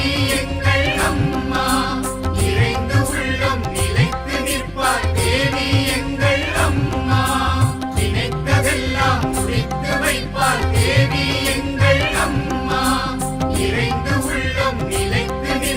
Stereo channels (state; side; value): identical; both; correlation 1.00